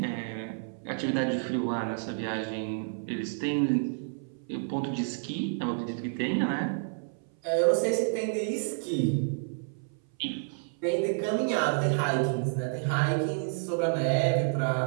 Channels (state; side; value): silent; left; 57 dB below the other